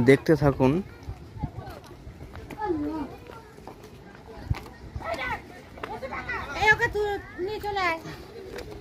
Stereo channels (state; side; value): identical; both; correlation 1.00